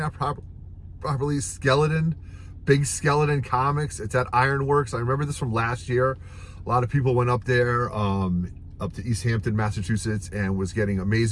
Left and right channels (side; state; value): both; identical; correlation 1.00